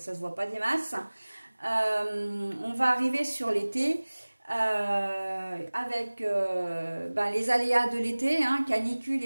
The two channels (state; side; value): inverted; both; correlation -1.00